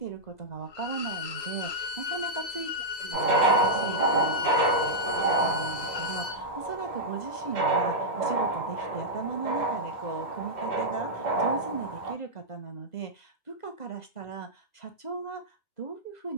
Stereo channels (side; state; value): right; late; 2.7 ms